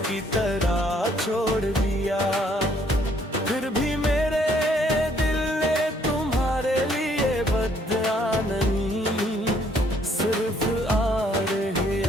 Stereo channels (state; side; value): normal; both; correlation 0.65